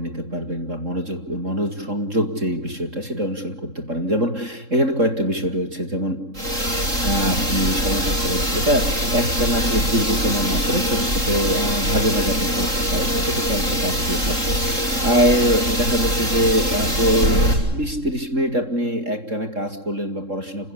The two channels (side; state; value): left; late; 3.7 ms